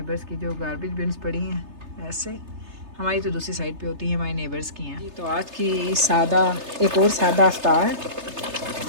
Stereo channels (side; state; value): left; late; 3.3 ms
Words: की जो गार्बेज बिन्स पड़ी हैं, ऐसे हमारी तो दूसरी साइड पे होती है, हमारे नेबर्स की हैं। तो आज की सादा, एक और सादा अफ्तार।